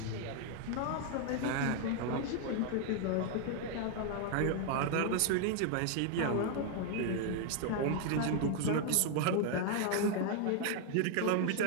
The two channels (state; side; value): different; both; correlation 0.00